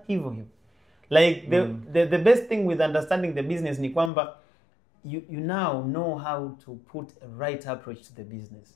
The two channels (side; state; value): right; drops out; at 4.1 s